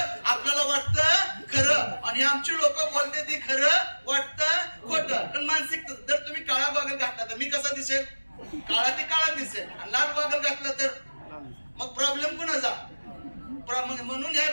आपल्याला वाटतं खरं, आणि आमची लोक बोलते ती खरं वाटतं खोटं. पण मानसिक, जर तुम्ही काळा गॉगल घातला तर मी कसा दिसेल? काळा ते काळा दिसेल. आणि लाल गॉगल घातला तर मग प्रॉब्लेम कोणाचा? म्हणून ह्या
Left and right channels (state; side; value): inverted; both; correlation -1.00